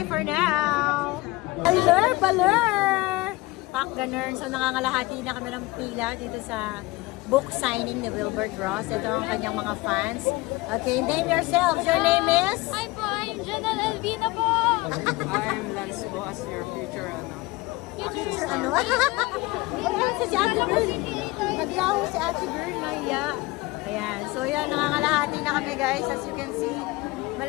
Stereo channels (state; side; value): quieter; right; 21.5 dB